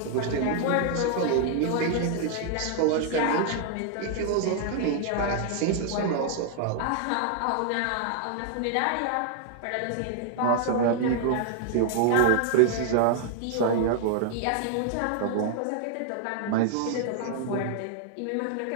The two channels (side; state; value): both; different; correlation 0.00